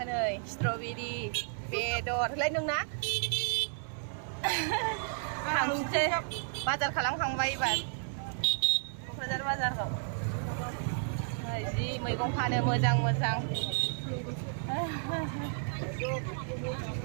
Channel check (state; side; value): silent; left; 56 dB below the other